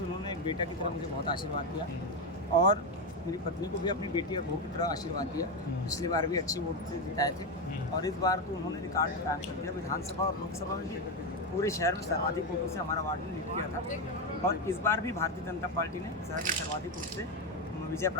उन्होंने एक बेटा की तरह मुझे बहुत आशीर्वाद दिया और मेरी पत्नी को भी अपनी बेटी और बहू की तरह आशीर्वाद दिया। पिछली बार भी अच्छी वोट से जिताए थे और इस बार तो उन्होंने रिकॉर्ड कायम कर दिया। विधानसभा और लोकसभा में भी पूरे शहर में सर्वाधिक वोटों से हमारा वार्ड ने लीड किया था और इस बार भी भारतीय जनता पार्टी ने शहर में सर्वाधिक वोट से विजय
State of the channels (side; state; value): both; normal; correlation 0.09